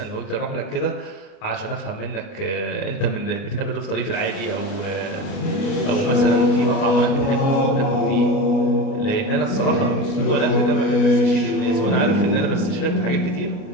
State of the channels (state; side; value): late; right; 29 ms